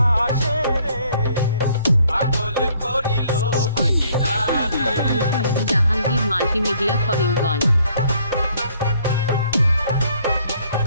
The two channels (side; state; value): both; inverted; correlation -0.62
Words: আসে রে। পাগল করিল ভাগিনা রে। জাহাঙ্গীর মাল্টিমিডিয়া করিমগঞ্জ।